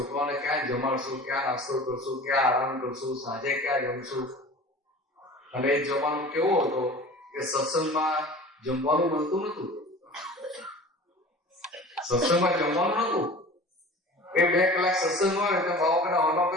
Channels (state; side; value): normal; both; correlation 0.40